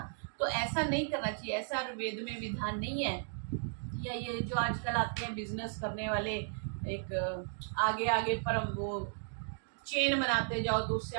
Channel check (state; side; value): silent; left; digital silence